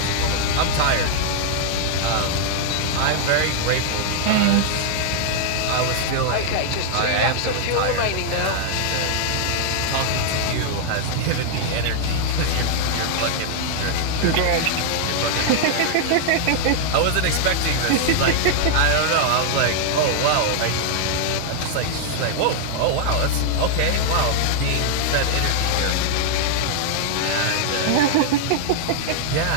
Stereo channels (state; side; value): different; both; correlation 0.00